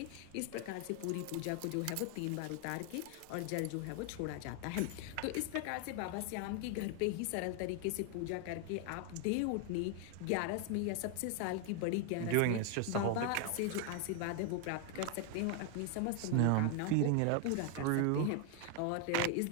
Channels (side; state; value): both; different; correlation 0.00